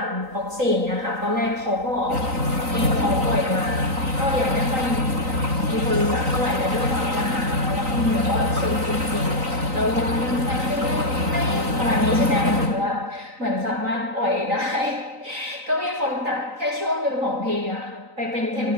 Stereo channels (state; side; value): late; left; 3.9 ms